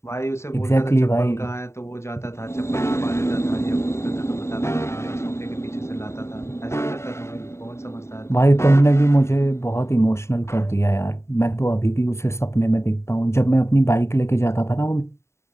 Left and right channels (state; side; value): late; right; 0.13 ms